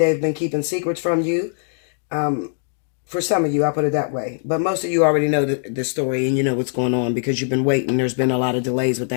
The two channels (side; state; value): right; silent; digital silence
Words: been keeping secrets from you. For some of you, I'll put it that way. But most of you already know the story and you know what's going on because you've been waiting. There's been a lot of delays with